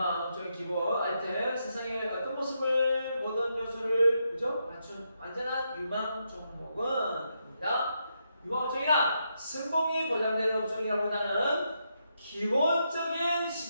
업종의 기본 아이템 세상의 어떤 모습을 모든 요소를 그죠? 맞춘 안전한 유망 종목은입니다. 유망 업종이란 성공이 보장되는 업종이라보다는 기본적인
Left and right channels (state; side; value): inverted; both; correlation -0.81